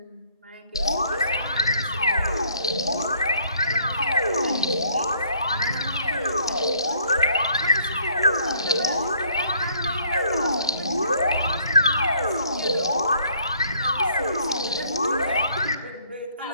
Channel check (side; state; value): both; inverted; correlation -0.62